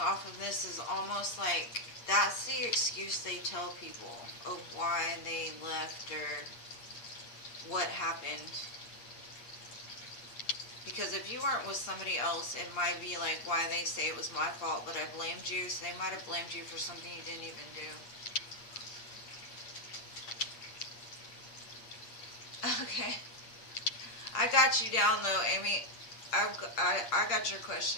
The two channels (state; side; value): late; right; 8.5 ms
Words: of this is almost like that's the excuse they tell people of why they left or what happened. Because if you weren't with somebody else, it might be like why they say it was my fault, but I blamed you. So they might have blamed you for something you didn't even do. Okay. I got you down though, Amy. I got your